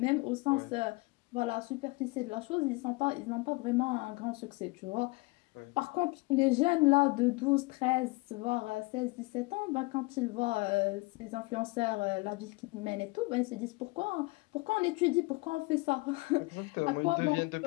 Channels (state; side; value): quieter; right; 25.3 dB